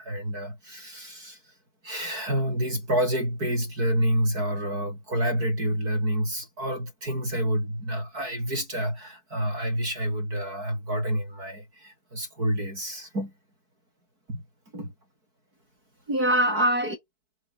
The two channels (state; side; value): late; left; 4.6 ms